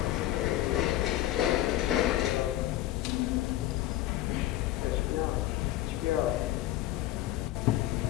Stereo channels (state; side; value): quieter; right; 14.7 dB